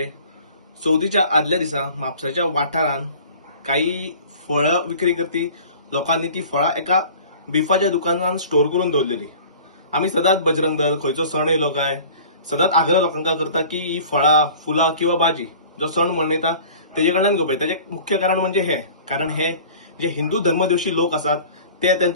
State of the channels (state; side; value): inverted; both; correlation -0.44